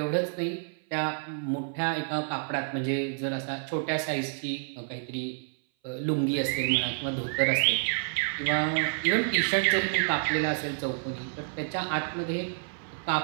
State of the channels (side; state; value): left; silent; 57 dB below the other